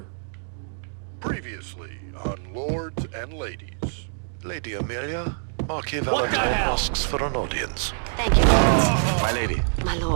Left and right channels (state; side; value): silent; left; digital silence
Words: Previously on Lords and Ladies. Lady Amelia, Marquis What the Valentine hell? asks for an audience. Thank you, Lords. My lady. My